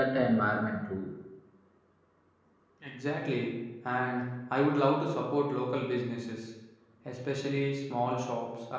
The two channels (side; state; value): both; identical; correlation 1.00